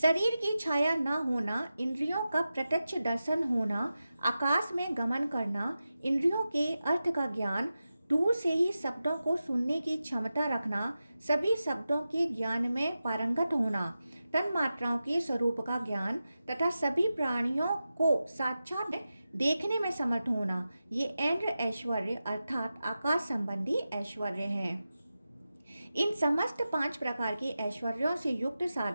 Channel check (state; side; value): inverted; both; correlation -0.93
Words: की छाया न होना, इंद्रियों का प्रत्यक्ष दर्शन होना, आकाश में गमन करना, इंद्रियों के अर्थ का ज्ञान, दूर से ही शब्दों को सुनने की क्षमता रखना, सभी शब्दों के ज्ञान में पारंगत होना, तन मात्राओं के स्वरूप का ज्ञान तथा सभी प्राणियों को साक्षात देखने में समर्थ होना, ये इंद्र ऐश्वर्य अर्थात आकाश संबंधी ऐश्वर्य हैं। इन समस्त 5 प्रकार के ऐश्वर्यों से युक्त